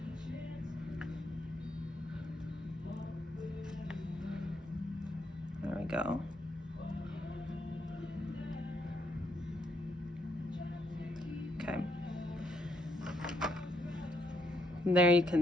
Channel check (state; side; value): normal; both; correlation 0.75